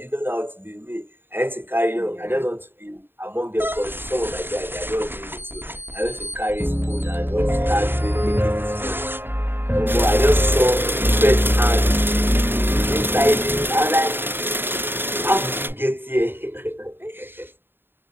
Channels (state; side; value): late; left; 0.10 ms